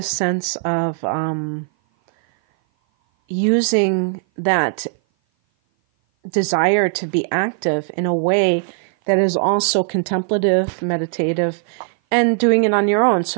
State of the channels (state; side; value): silent; left; 57 dB below the other